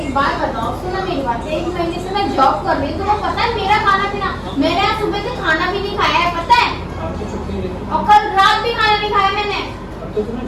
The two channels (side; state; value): both; identical; correlation 1.00